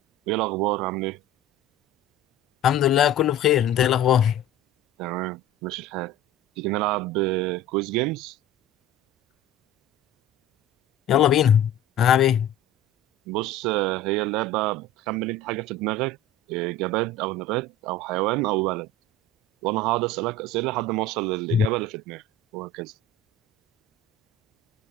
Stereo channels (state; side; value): normal; both; correlation 0.37